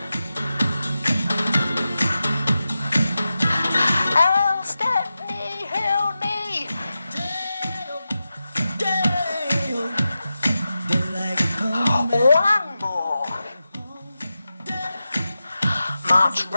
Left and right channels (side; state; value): both; inverted; correlation -0.92